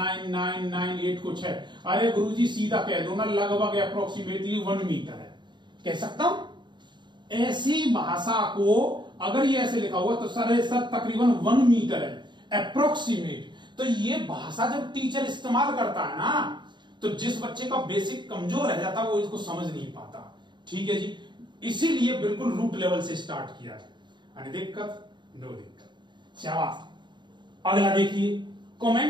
कुछ है। अरे गुरुजी सीधा कह दो ना, लगभग अप्रोक्सीमेटली 1 मीटर है, कह सकता हूं। ऐसी भाषा को अगर ये ऐसे लिखा हुआ तो सर तकरीबन 1 मीटर है, अप्रोक्सीमेट। तो ये भाषा जब टीचर इस्तेमाल करता है ना, तो जिस बच्चे का बेसिक कमजोर रह जाता है वो इसको समझ नहीं पाता। ठीक है जी, इसीलिए बिल्कुल रूट लेवल से स्टार्ट किया है। दिक्कत नो दिक्कत, शाबाश। अगला देखिए,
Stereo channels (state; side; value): late; left; 0.22 ms